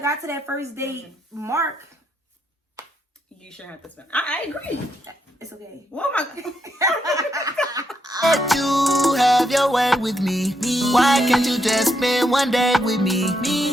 to that first date mark, you shouldn't have to spend. I agree. It's okay. Oh my God. Let you have your way with me. Why can't you just spend one day with me?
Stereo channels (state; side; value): normal; both; correlation 0.79